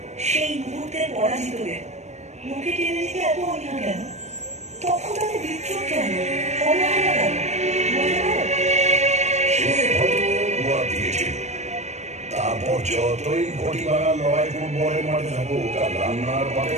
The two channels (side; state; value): left; late; 0.33 ms